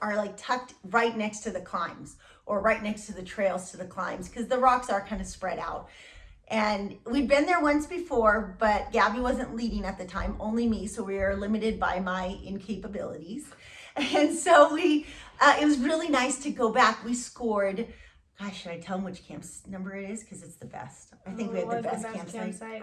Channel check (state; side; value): identical; both; correlation 1.00